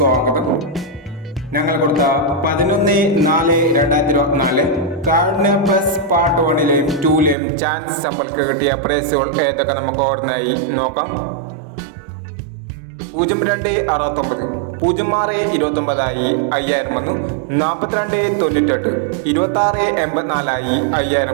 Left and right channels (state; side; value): drops out; left; at 7.4 s